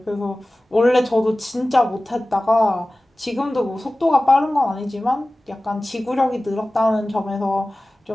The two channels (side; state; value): both; normal; correlation 0.97